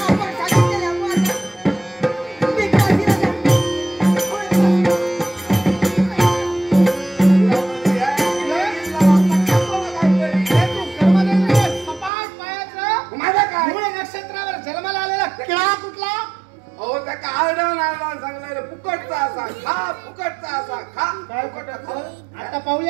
आपण सांगितलेलं मी काशीला जाते. नक्षत्रावर जन्माला आलेला किळा कुठला? अहो त्या काढा सांगलाय फुकटचा असा खा, फुकटचा असा खा. काय फुकट? आता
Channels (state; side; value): drops out; left; at 12.1 s